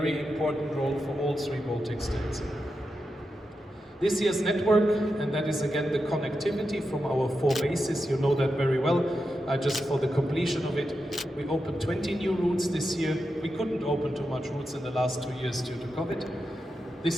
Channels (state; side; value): normal; both; correlation 0.88